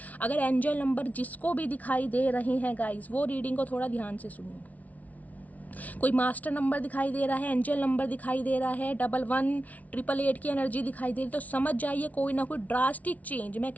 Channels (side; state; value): right; late; 0.071 ms